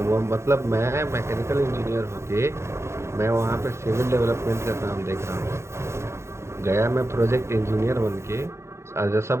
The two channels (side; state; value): left; late; 0.13 ms